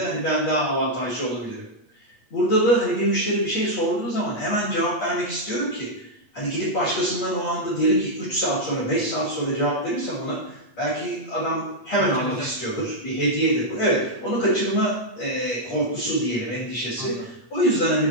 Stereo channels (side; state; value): right; late; 8.5 ms